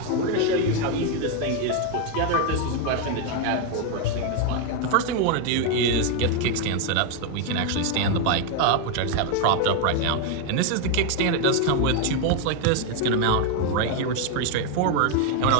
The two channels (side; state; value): both; different; correlation 0.01